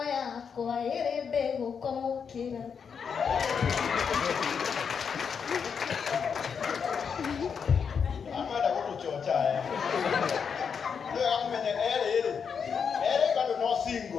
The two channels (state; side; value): quieter; right; 6.5 dB